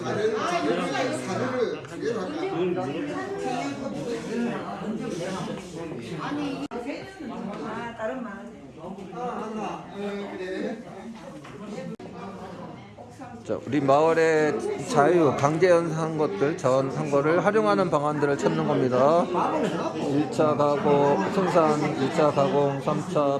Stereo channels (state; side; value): identical; both; correlation 1.00